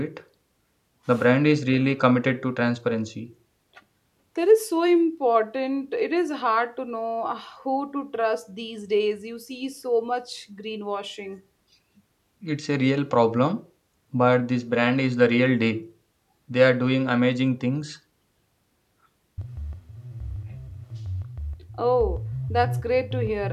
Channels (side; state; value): both; identical; correlation 1.00